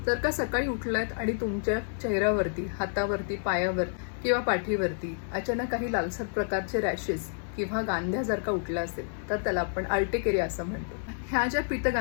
जर का सकाळी उठलात आणि तुमच्या चेहऱ्यावरती, हातावरती, पायावर किंवा पाठीवरती अचानक काही लालसर प्रकारचे रॅशेस किंवा गांध्या जर का उठल्या असेल तर त्याला आपण अर्टिकेरिया असं म्हणतो. ह्या ज्या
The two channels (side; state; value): right; silent; digital silence